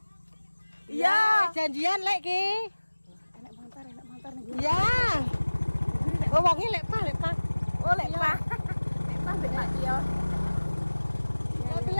Iya. Janjian lek ki. Enak montor nih. Ya. Oh, wonge lek pa. Oh, lek Pak. Lek Pak mbek Pak Tio. Lek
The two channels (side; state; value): both; inverted; correlation -1.00